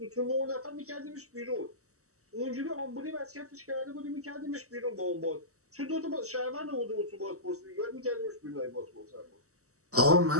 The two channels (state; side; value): late; left; 0.65 ms